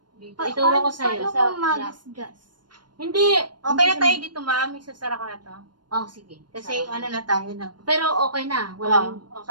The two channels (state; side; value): late; left; 0.71 ms